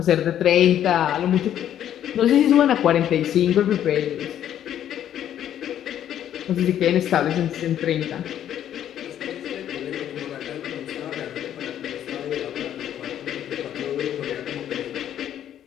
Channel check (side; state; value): right; quieter; 10.6 dB